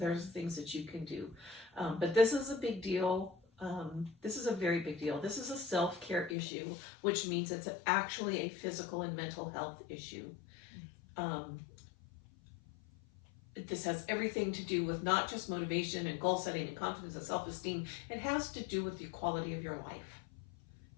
things that you can do. But this is a big deal. This is a very big deal. This is a self-care issue, which means it's actually a physical and mental health issue. This has everything to do with not just motivation and goal setting and confidence and self-esteem. It has to do with the quality of your life.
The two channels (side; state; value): right; drops out; at 6.4 s